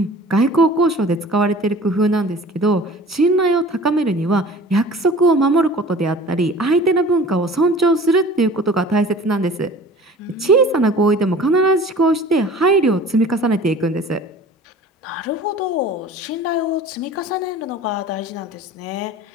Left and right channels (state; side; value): normal; both; correlation 0.44